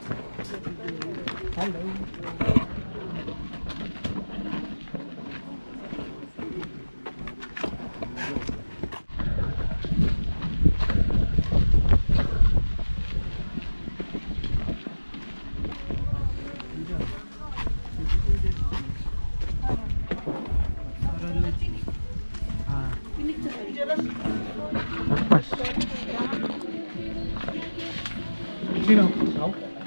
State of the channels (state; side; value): inverted; both; correlation -1.00